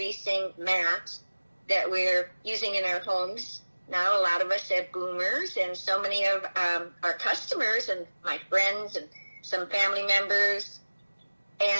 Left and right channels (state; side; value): inverted; both; correlation -1.00